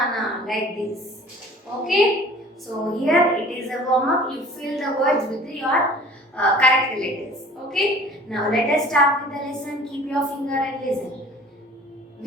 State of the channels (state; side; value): normal; both; correlation 0.47